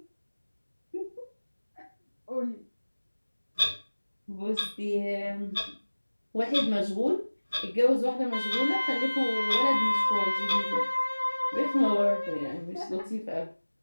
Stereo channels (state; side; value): inverted; both; correlation -1.00